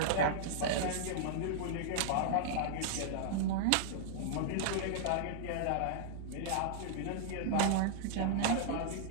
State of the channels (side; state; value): both; different; correlation -0.01